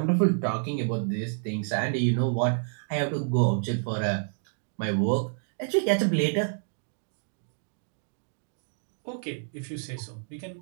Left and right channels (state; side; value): silent; left; digital silence